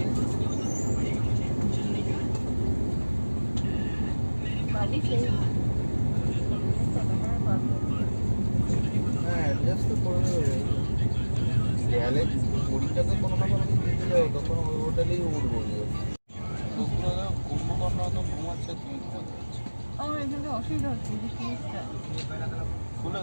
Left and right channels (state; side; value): inverted; both; correlation -1.00